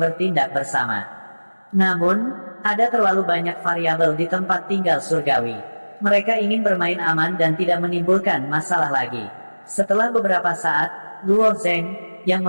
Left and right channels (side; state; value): both; inverted; correlation -1.00